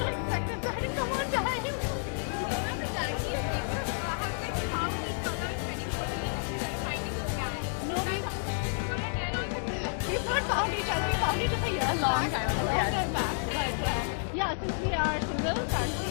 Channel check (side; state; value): right; silent; digital silence